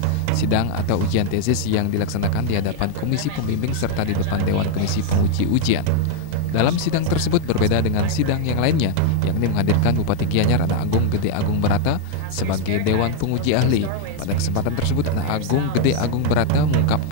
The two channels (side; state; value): both; different; correlation 0.01